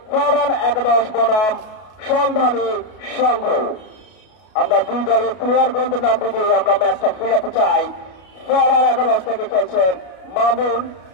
ফরওয়ার্ড একাদশ বনাম সন্ধানী সংঘ। আমরা দুই দলের প্লেয়ার গ্রন্থের নাম দিয়ে আমরা ম্যাচটা ফিরাতে চাই। ফরওয়ার্ড একাদশ থেকে খেলছেন মামুন,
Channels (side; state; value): right; late; 32 ms